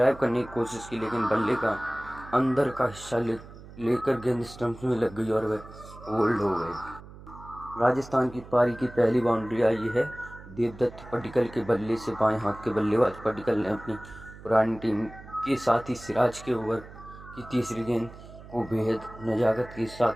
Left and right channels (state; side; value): noise; right; hum, 17 dB below the sound